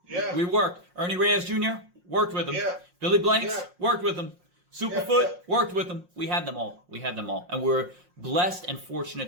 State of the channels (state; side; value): late; left; 5.6 ms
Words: Yeah. We worked. Ernie Reyes Jr., worked with him. Yeah. Billy Blanks, Yeah. worked with him. Superfoot, Yeah. worked with them. We had them all. And we're blessed and